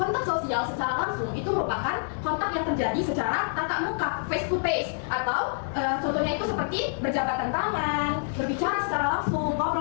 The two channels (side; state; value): right; silent; 60 dB below the other